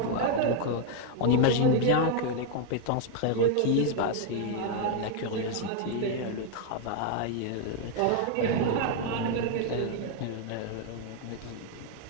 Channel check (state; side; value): different; both; correlation 0.00